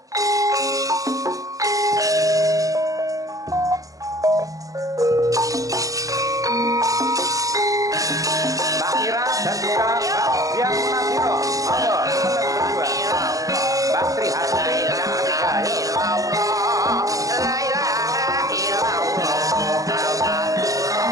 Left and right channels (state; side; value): late; left; 0.17 ms